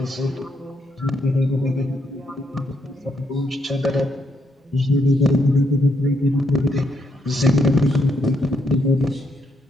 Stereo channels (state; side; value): normal; both; correlation 0.76